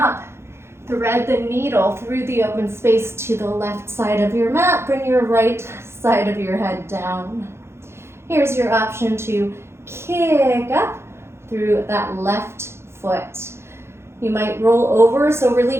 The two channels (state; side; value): late; left; 0.12 ms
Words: Thread the needle through the open space to the left side of your mat. Bring your right side of your head down. Here's your option to kick up through that left foot. You might roll over, so really